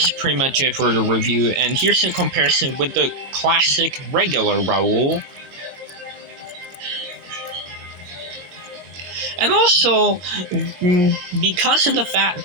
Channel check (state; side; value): late; left; 22 ms